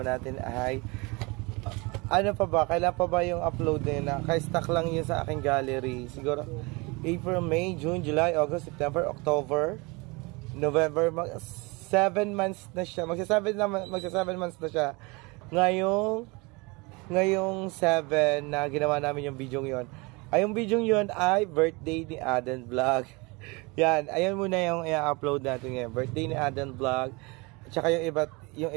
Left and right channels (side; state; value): left; quieter; 26.7 dB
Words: natin ay ano pa ba? Kailan pa ba yung upload na naka-stack lang yun sa aking gallery siguro April, May, June, July, August, September, October, November, 7 months na siya. Magsa 7 months na siya. Ngayong 7 na ginawa namin yung video yon. Ay, yung video yon ay birthday ni Aden Vlog. Yan, ayun muna yung i-upload natin ngayon. Birthday ni Aden Vlog. At saka yung